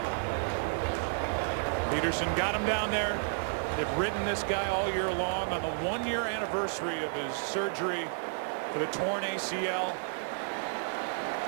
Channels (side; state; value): left; silent; digital silence